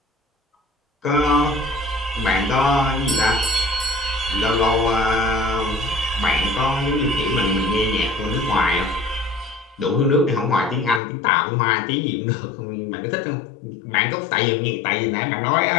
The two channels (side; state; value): right; drops out; at 11.0 s